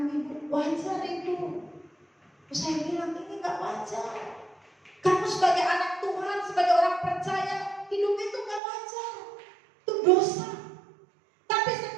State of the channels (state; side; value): drops out; left; at 8.6 s